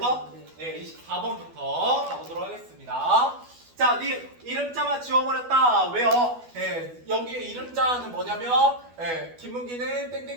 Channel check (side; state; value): left; late; 12 ms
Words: 예, 24번부터 가보도록 하겠습니다. 자, 네 이름자만 지워버렸다. 왜요? 예, 여기에 이름자는 뭐냐면, 예, 김문기는